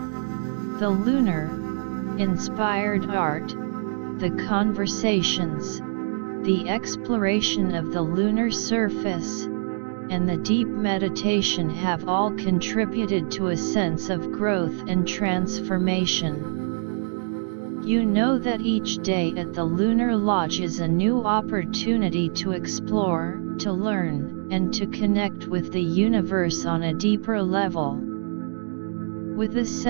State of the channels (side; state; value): left; silent; digital silence